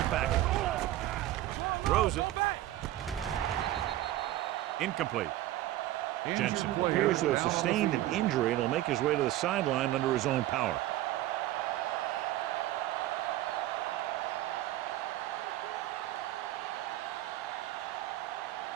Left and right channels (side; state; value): left; quieter; 14.8 dB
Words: package. Throws it. Incomplete. Jensen appears to have sustained an injury and will make his way to the sideline under his own power.